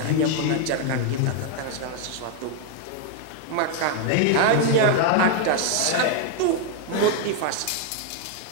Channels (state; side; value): different; both; correlation 0.00